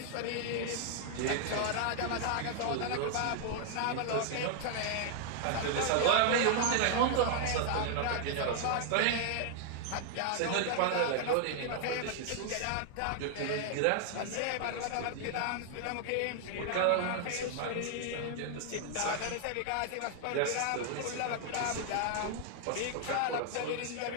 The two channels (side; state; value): both; different; correlation 0.00